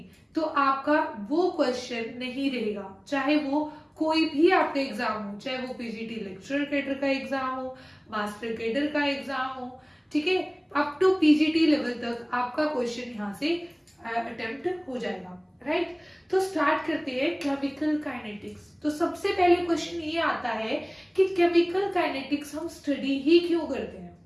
तो आपका वो क्वेश्चन नहीं रहेगा, चाहे वो कोई भी आपका एग्जाम हो, चाहे वो पीजीटी लेक्चरर कैडर का एग्जाम हो, मास्टर कैडर का एग्जाम हो, ठीक है, अप टू पीजीटी लेवल तक आपका क्वेश्चन यहाँ से अटेम्प्ट हो जाएगा। राइट। तो स्टार्ट करते हैं केमिकल काइनेटिक्स। तो सबसे पहले क्वेश्चन ये आता है कि केमिकल काइनेटिक्स हम स्टडी ही क्यों करते हैं,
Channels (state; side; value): identical; both; correlation 1.00